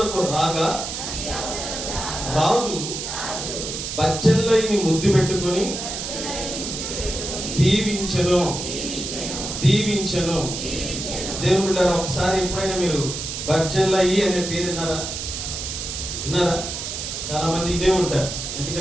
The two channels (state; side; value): noise; right; hiss, 5 dB below the sound